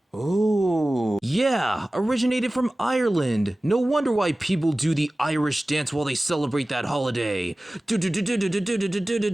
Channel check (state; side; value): normal; both; correlation 0.97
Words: Oh, yeah, originated from Ireland. No wonder why people do the Irish dance while they celebrate that holiday.